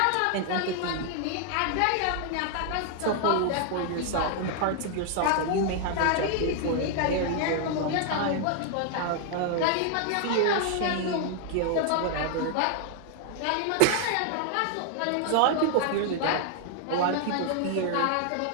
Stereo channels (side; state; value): both; different; correlation 0.00